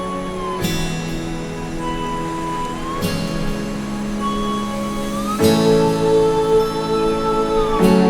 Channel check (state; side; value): identical; both; correlation 1.00